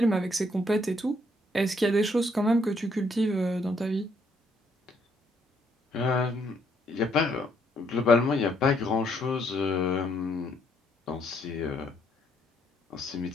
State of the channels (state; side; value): normal; both; correlation 0.70